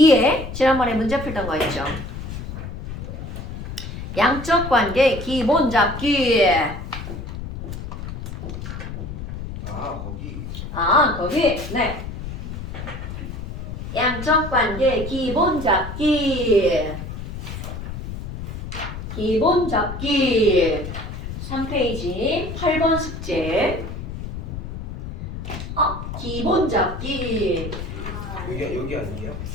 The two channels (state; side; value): noise; left; rumble, 8 dB below the sound